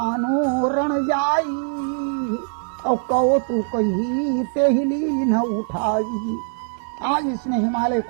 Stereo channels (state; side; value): silent; left; digital silence